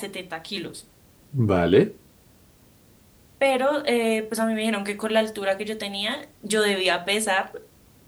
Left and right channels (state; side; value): identical; both; correlation 1.00